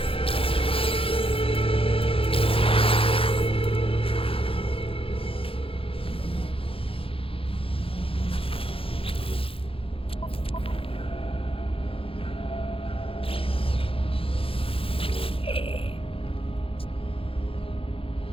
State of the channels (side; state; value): right; late; 0.27 ms